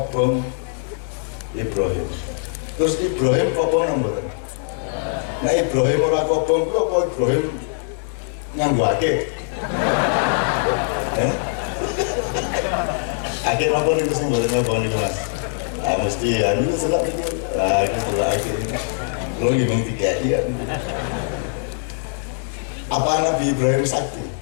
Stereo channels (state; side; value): silent; right; digital silence